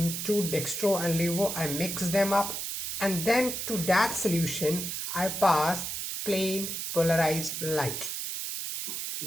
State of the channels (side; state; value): right; noise; hiss, 4 dB below the sound